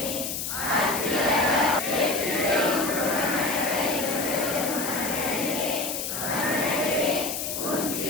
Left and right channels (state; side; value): noise; left; hiss, 4 dB below the sound